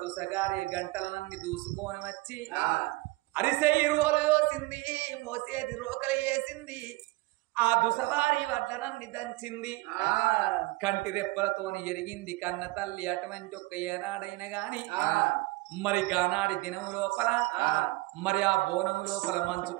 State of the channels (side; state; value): left; quieter; 21.3 dB